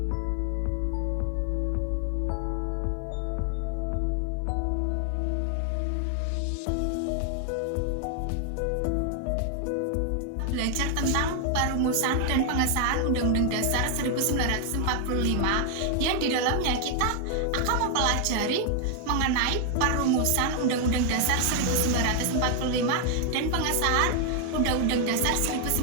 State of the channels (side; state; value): both; different; correlation 0.00